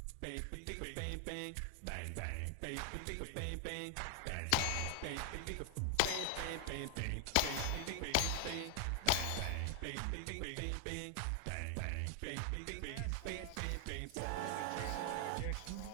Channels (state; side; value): different; both; correlation 0.00